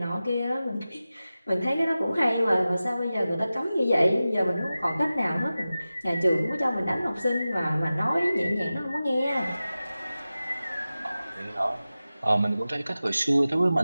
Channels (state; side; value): inverted; both; correlation -0.95